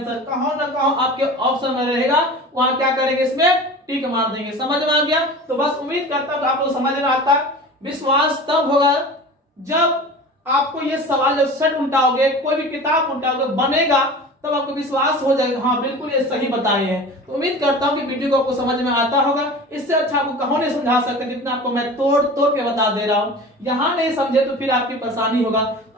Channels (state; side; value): normal; both; correlation 0.36